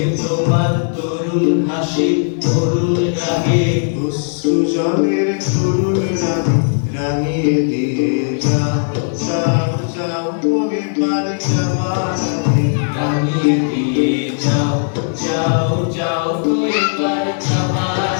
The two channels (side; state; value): right; silent; digital silence